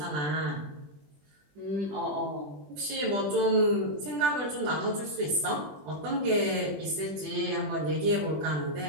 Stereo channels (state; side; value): late; left; 20 ms